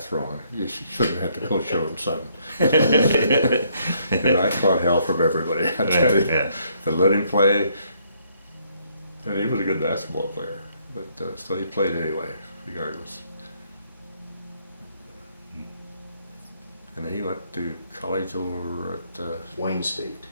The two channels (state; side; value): inverted; both; correlation -0.69